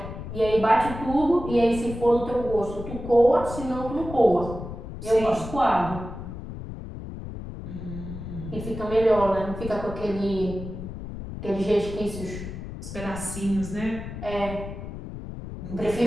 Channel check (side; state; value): left; noise; rumble, 9 dB below the sound